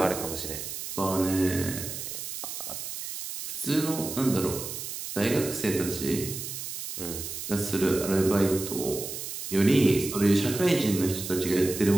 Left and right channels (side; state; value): right; noise; hiss, 7 dB below the sound